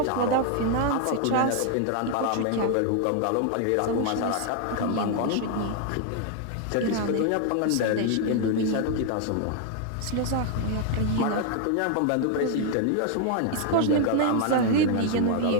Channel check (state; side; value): different; both; correlation 0.00